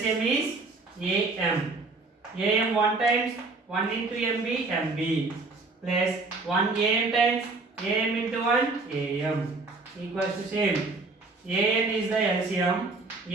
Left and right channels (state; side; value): quieter; left; 3.6 dB